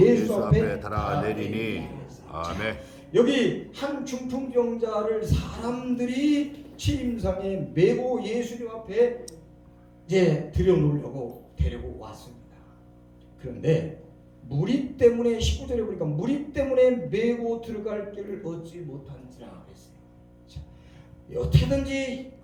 앞에 달아내리니. 아멘. 여기 한 중풍병자를 사람들이 침상에 메고 예수님 앞에 이제 들여놓으려고 데리고 왔습니다. 그런데 무리 때문에 19절에 보니까 무리 때문에 메고 들어갈 길을 얻지 못한지라 그랬어요. 자, 어떻게든지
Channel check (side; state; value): both; identical; correlation 1.00